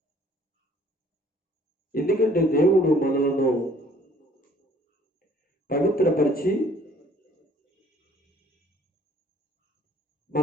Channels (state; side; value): normal; both; correlation 0.57